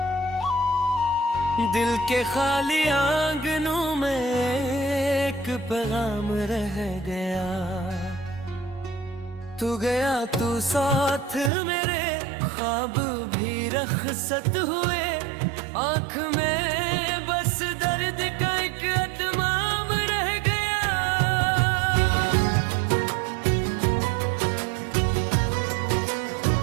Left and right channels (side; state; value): left; drops out; at 11.5 s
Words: दिल के खाली आंगनों में एक पैगाम रह गया। तू गया तू साथ मेरे, ख्वाब भी रखसत हुए, आँख में बस दर्द का एक अतमाम रह गया।